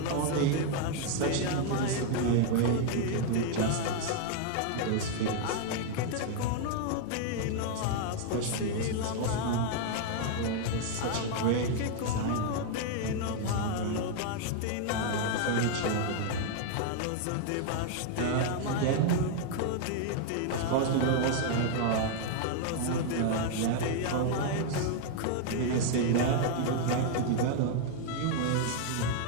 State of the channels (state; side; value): different; both; correlation 0.00